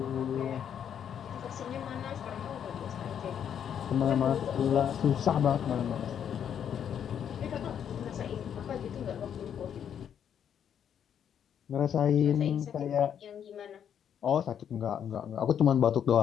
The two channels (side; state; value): right; quieter; 8.7 dB